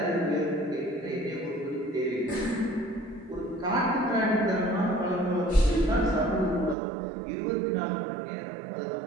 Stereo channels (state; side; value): drops out; left; at 6.8 s